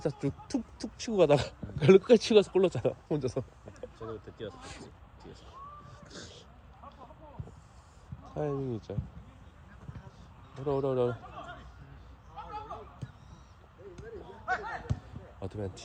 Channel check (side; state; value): both; identical; correlation 1.00